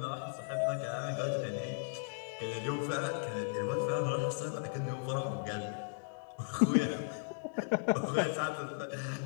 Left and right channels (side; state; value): right; silent; digital silence